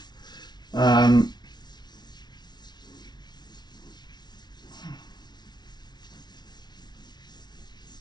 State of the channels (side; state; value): right; late; 0.20 ms